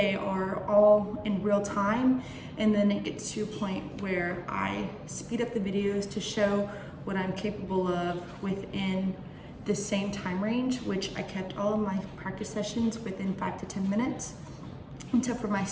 are all in real time, and then it gets to a point where I speed up the videos to show what I'm capable of within the same time range, which I kept all of my practice sessions within 5 to 10 minutes. And so for my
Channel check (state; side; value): identical; both; correlation 1.00